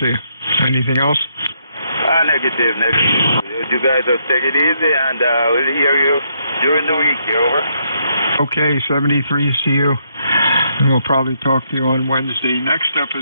you. Anything else? Negative. You guys just take it easy, and we'll hear you during the week. Over. Okay, 73, see you. And we'll probably talk to you on Wednesday. Next up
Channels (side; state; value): both; inverted; correlation -0.75